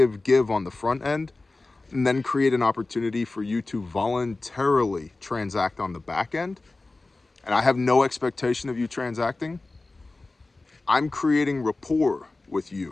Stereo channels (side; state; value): right; quieter; 3.3 dB